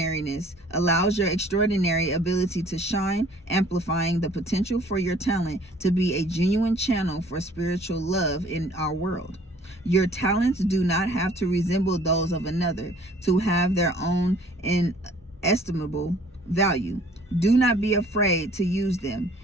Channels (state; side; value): normal; both; correlation 0.55